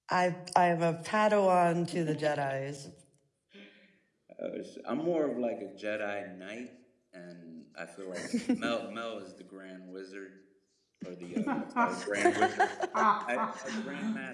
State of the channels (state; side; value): identical; both; correlation 1.00